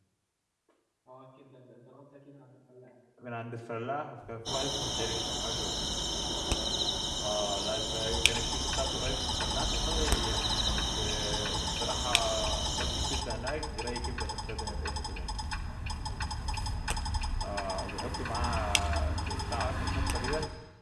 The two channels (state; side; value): identical; both; correlation 1.00